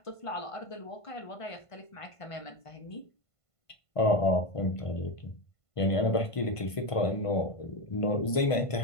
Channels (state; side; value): late; right; 1.5 ms